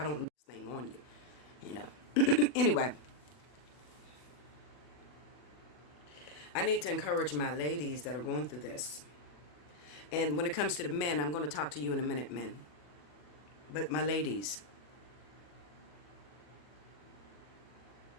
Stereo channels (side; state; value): right; late; 40 ms